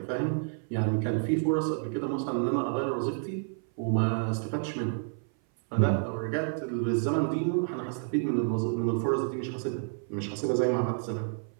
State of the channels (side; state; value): left; silent; 57 dB below the other